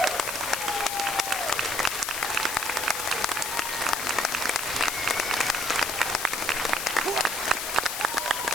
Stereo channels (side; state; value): left; noise; hiss, 3 dB below the sound